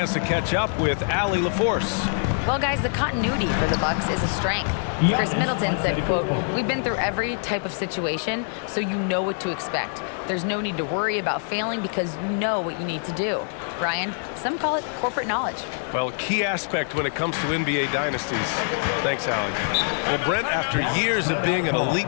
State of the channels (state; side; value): silent; right; 62 dB below the other